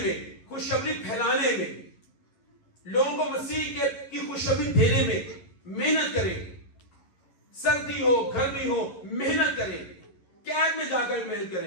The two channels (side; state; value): right; late; 11 ms